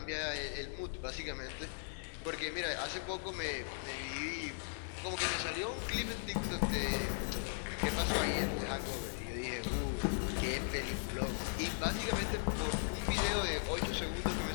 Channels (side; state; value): right; silent; digital silence